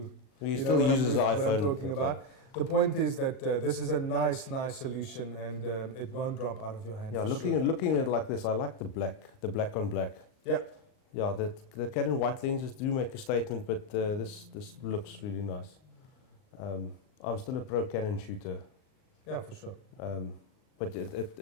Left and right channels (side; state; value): right; late; 39 ms